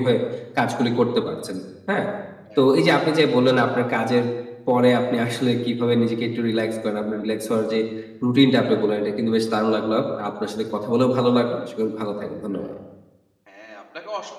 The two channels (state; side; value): identical; both; correlation 1.00